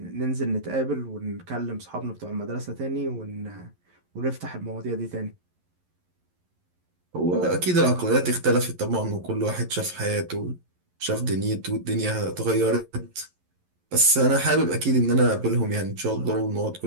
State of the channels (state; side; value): late; left; 11 ms